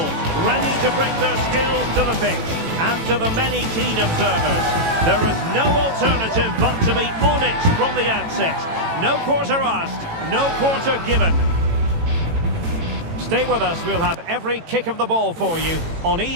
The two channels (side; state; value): left; late; 18 ms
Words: ready to bring their skills to the pitch. And to the many keen observers, there is no alternative but to be on it from the outset. No quarter asked, no quarter given. Stay with us, we'll have every kick of the ball for you on